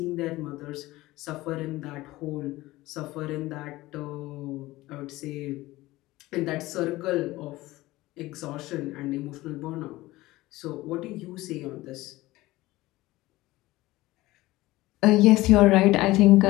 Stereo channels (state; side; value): quieter; right; 18.4 dB